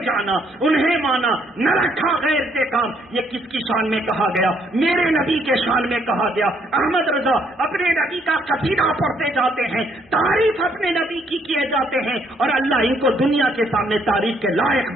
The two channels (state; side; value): normal; both; correlation 0.69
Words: جانا, انہیں مانا, نہ رکھا غیر سے کام. یہ کس کی شان میں کہا گیا؟ میرے نبی کے شان میں کہا گیا. احمد رضا اپنے نبی کا قصیدہ پڑھتے جاتے ہیں, تعریف اپنے نبی کی کیے جاتے ہیں, اور اللہ ان کو دنیا کے سامنے تعریف کے لائق